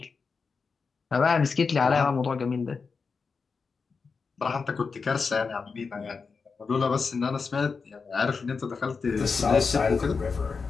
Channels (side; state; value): right; quieter; 5.0 dB